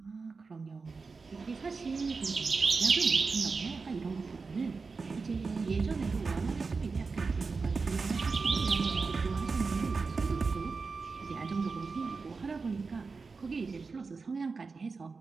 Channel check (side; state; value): left; quieter; 4.5 dB